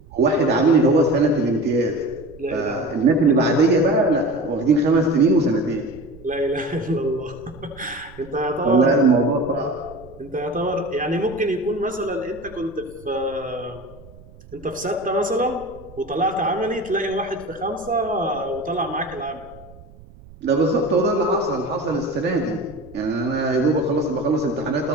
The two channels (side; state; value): right; noise; rumble, 21 dB below the sound